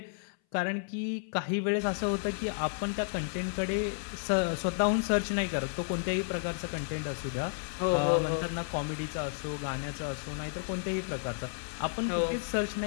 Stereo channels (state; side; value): silent; right; 56 dB below the other